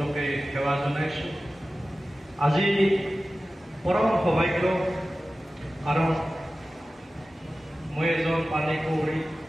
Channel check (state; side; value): normal; both; correlation 0.95